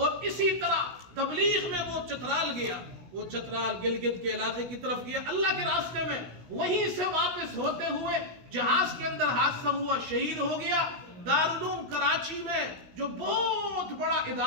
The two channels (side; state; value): left; late; 16 ms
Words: اسی طرح تبلیغ میں وہ چترال گیا، وہ چترال گلگت کے علاقے کی طرف گیا اللہ کے راستے میں. وہیں سے واپس ہوتے ہوئے جہاز کے اندر حادثہ ہوا، شہید ہو گیا. دارالعلوم کراچی میں جو بہت بڑا